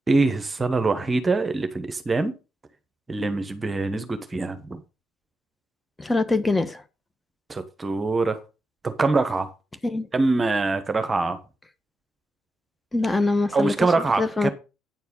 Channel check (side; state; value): both; normal; correlation 0.90